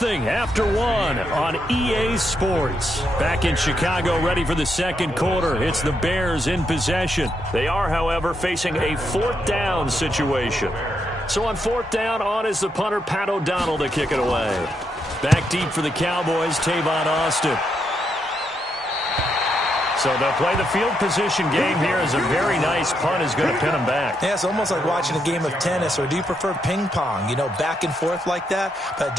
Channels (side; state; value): both; normal; correlation 0.80